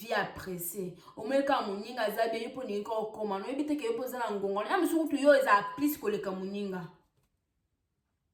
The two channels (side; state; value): both; identical; correlation 1.00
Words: apprécier o meka muninga zabe yipo ni ko koma no ebite ke yopo za na ngongo na msu kutu yo eza plus ko le kamuninga